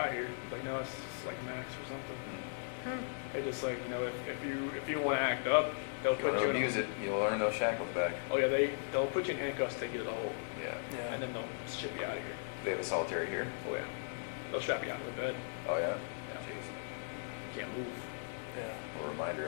here. Like, no, it's just like a max or something. They just like, you know, if you want to act up, they'll If you put want you to in abuse it, you'll earn those shackles back. Oh yeah, they'll put you in handcuffs, take you to the hole, Yeah. Yeah. and then they'll ship you out of here. They have a solitary here? Oh yeah, they'll strap you out to the bed. Oh, yeah? Yeah. Jeez. You can't move. Yeah. A reminder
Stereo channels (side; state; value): right; silent; digital silence